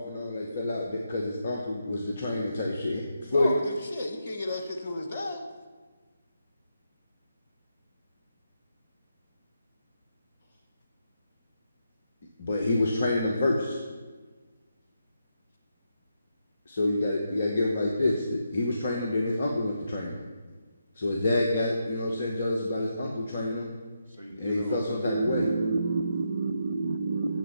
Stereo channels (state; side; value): inverted; both; correlation -0.83